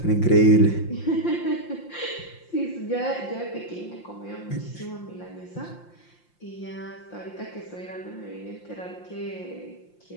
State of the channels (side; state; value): right; late; 5.7 ms